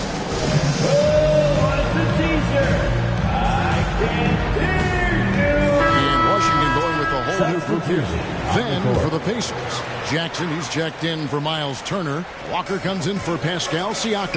And Washington going with a whole new group here. Then for the Pacers, Jackson, he's checked in for Miles Turner. Walker comes in for Pascal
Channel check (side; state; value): both; identical; correlation 1.00